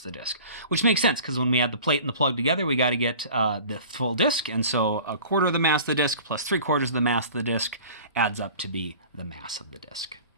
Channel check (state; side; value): inverted; both; correlation -0.43